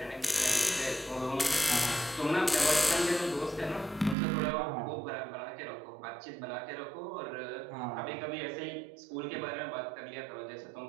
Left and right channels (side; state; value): left; drops out; at 4.2 s